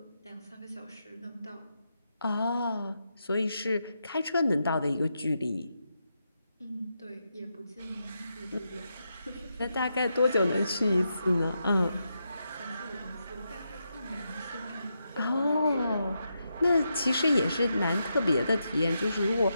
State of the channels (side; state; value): both; inverted; correlation -0.84